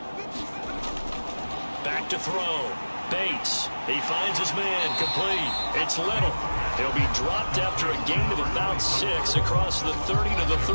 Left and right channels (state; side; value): inverted; both; correlation -1.00